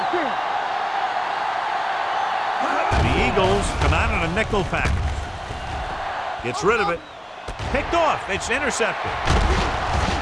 The Eagles come out in a nickel package. Gets rid of it. Picked off. It's intercepted.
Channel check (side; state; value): both; identical; correlation 1.00